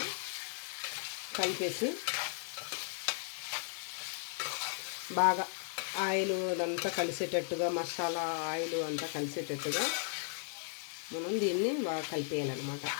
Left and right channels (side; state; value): right; silent; digital silence